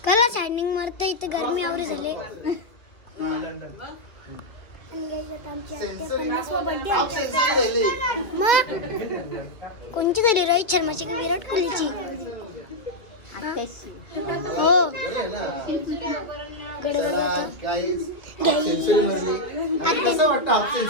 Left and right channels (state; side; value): late; right; 2.4 ms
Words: कला स्टँडिंग मारतं इथं गरमी आवरे झाले. आणि गाईज आता आमची आत्या 50वा बर्थडे मग कोणची तरी रोहित शर्माची की विराट कोहलीची. हो कडे बघा आता